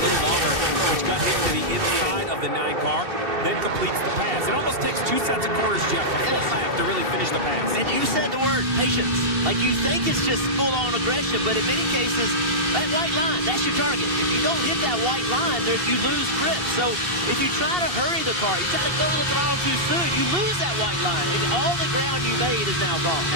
little longer, which got him to the inside of the 9 car, then completes the pass. It almost takes 2 sets of corners, Jeff, a full lap to really finish the pass. And you said the word patience. Like, you think it's just full-on aggression, but in many cases, that white line, that's your target. If you don't hit that white line, you lose grip. So if you try to hurry the car, you try to go to the throttle too soon, you lose that white line. And all the ground you made is now gone.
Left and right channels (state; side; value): late; left; 2.7 ms